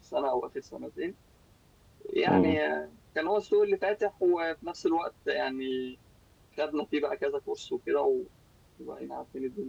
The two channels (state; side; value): identical; both; correlation 1.00